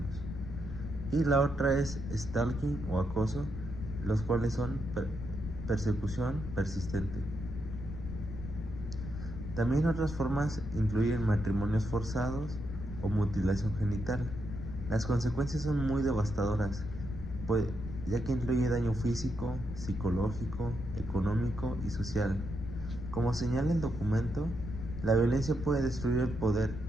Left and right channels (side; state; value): left; noise; rumble, 8 dB below the sound